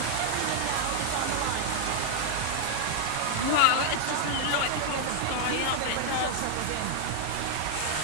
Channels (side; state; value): both; different; correlation 0.00